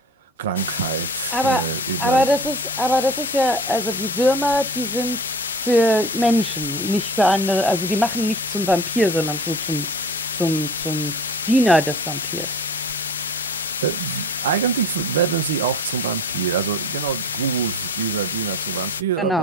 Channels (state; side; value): normal; both; correlation 0.40